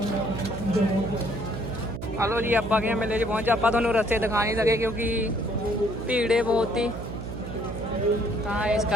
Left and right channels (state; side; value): noise; right; hum, 8 dB below the sound